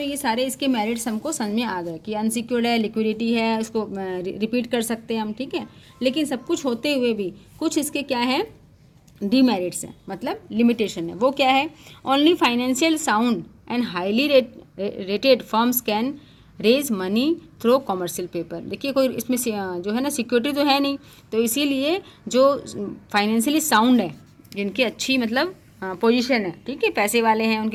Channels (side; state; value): both; identical; correlation 1.00